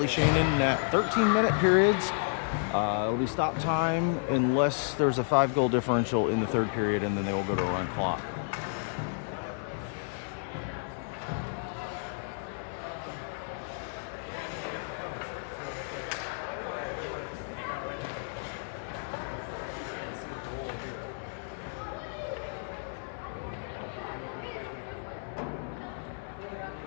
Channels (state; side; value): silent; right; digital silence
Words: Shane in net. 13-minute periods. It'll be stop time unless there's a 5-goal differential in the third period, and then they will go to a run clock.